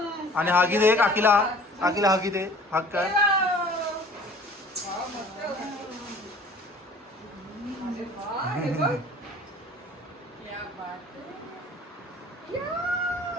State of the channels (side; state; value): both; normal; correlation 0.49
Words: आणि हागी दे काकीला हागी दे. हाक कर.